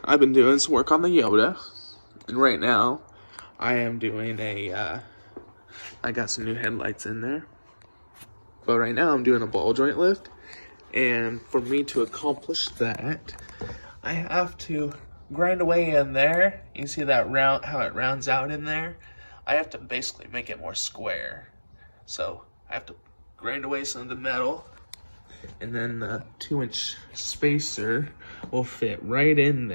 I've been doing some work on the Yoda, and right now, I am doing I got some new headlights in there, but right now I'm doing a ball joint lift, and for me to accomplish that, I have to grind away in there. You see that round, how it rounds out in there? I have to basically make it more square. So, I have to grind away some of the metal, and then the 2-inch spacer will fit right in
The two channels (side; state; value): both; inverted; correlation -1.00